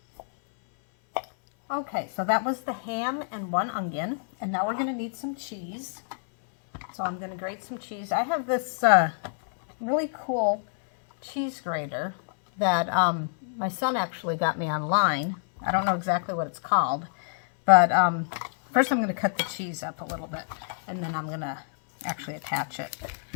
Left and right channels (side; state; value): right; silent; 60 dB below the other